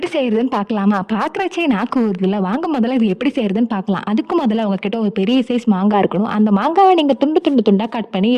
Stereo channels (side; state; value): both; identical; correlation 1.00